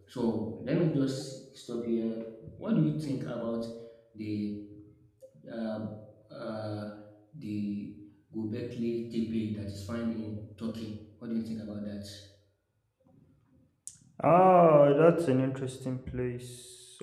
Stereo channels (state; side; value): identical; both; correlation 1.00